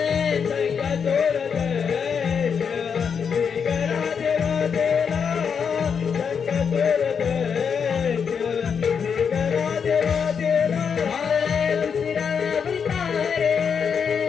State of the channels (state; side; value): quieter; right; 6.6 dB